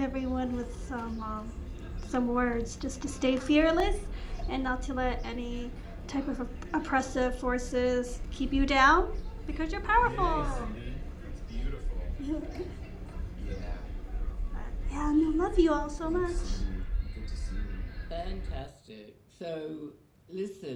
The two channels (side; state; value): both; identical; correlation 1.00